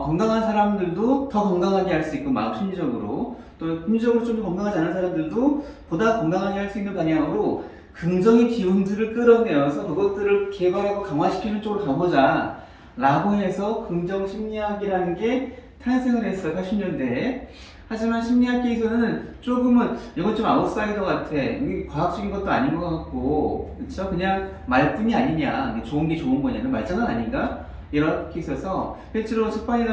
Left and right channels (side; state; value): both; identical; correlation 1.00